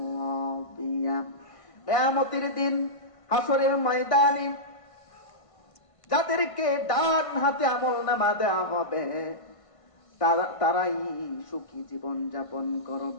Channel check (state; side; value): late; right; 1.5 ms